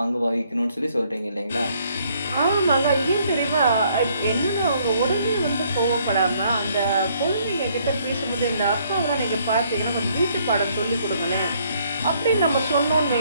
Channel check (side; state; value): both; inverted; correlation -0.66